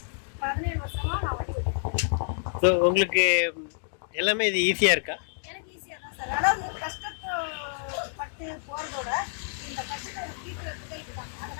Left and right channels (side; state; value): right; silent; digital silence